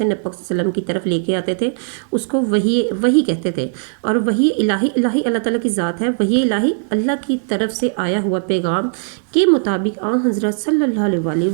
नबी वसल्लम की तरफ लेके आते थे, उसको वही कहते थे। और वही इलाही अल्लाह ताला की ज़ात है। वही इलाही अल्लाह की तरफ से आया हुआ पैगाम के मुताबिक हज़रत सल्लल्लाहु अलैहि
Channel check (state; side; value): silent; left; 61 dB below the other